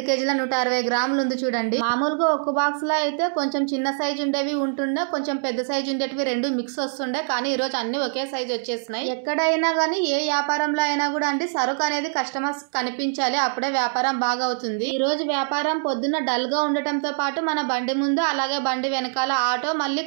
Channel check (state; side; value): silent; left; digital silence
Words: కేజీల 160 గ్రాములు ఉంది చూడండి. మామూలుగా ఒక బాక్స్ లో అయితే కొంచెం చిన్న సైజు ఉండేవి ఉంటుండే, కొంచెం పెద్ద సైజు ఉండేటివి 2 మిక్స్ వస్తుండే, కానీ ఈ రోజు అన్ని ఒకే సైజు వచ్చేసినాయి. ఎక్కడైనా గానీ ఏ వ్యాపారంలో అయినా కూడా అండి సరుకు అనేది కస్టమర్స్ కనిపించాలి, అప్పుడే వ్యాపారం బాగా అవుతుంది. ఈ రోజు వ్యాపారం పొద్దున్న డల్ గా ఉండటంతో పాటు మన బండి ముందు అలాగే బండి వెనకాల ఆటో మళ్ళీ